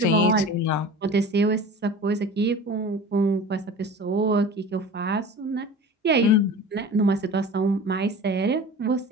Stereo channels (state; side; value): normal; both; correlation 0.37